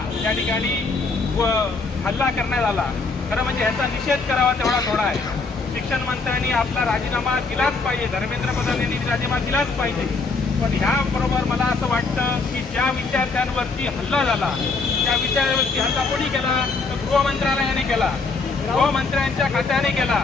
त्या ठिकाणी हल्ला करण्यात आला. खरं म्हणजे ह्याचा निषेध करावा तेवढा थोडा आहे. शिक्षण मंत्र्यांनी आपला राजीनामा दिलाच पाहिजे, धर्मेंद्र प्रधान यांनी राजीनामा दिलाच पाहिजे. पण ह्याबरोबर मला असं वाटतं की ज्या विद्यार्थ्यांवरती हल्ला झाला त्या विद्यार्थ्यांवरती हल्ला कोणी केला तर गृहमंत्रालयाने केला, गृहमंत्र्यांच्या खात्याने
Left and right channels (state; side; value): quieter; right; 4.1 dB